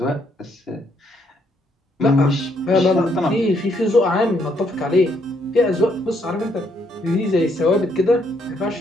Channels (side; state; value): both; normal; correlation 0.72